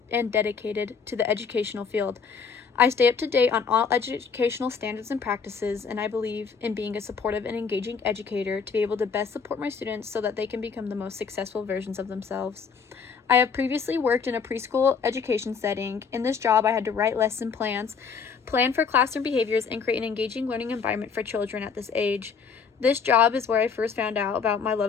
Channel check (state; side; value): quieter; right; 5.9 dB